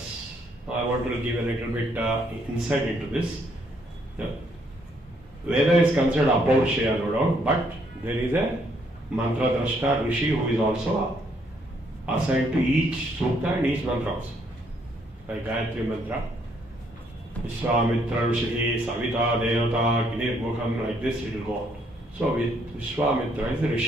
Now I want to give a little bit insight into this. Yeah. Veda is considered Apaurshaya, no doubt, but there is a Mantra Drashta Rishi who is also assigned to each Sukta and each Mantra also. Like Gayatri Mantra, Vishwamitra Rishi, Savita, Devata, Gnir Mukham, like this it will go on. So Vishwamitra is the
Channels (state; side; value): normal; both; correlation 0.70